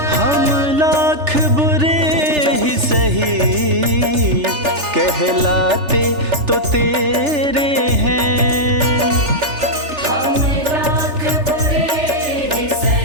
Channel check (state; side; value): late; left; 3.4 ms